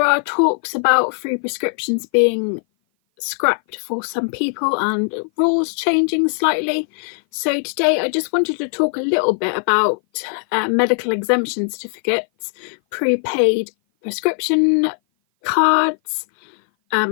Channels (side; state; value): right; silent; 56 dB below the other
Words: are talks about free prescriptions being scrapped for some people and rules changing slightly. So today I just wanted to talk a little bit about medical exemption certificates, prepaid prescription cards,